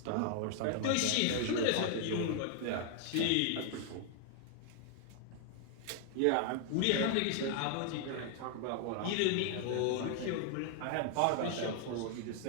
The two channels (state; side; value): different; both; correlation 0.00